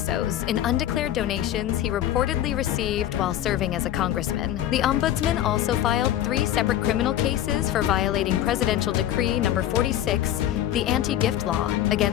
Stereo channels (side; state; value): right; quieter; 12.0 dB